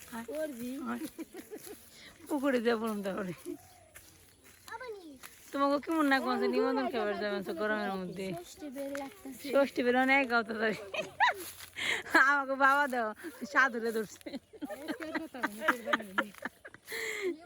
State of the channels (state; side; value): identical; both; correlation 1.00